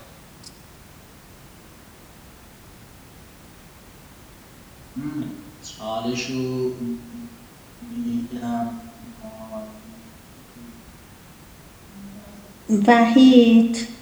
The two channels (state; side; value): identical; both; correlation 1.00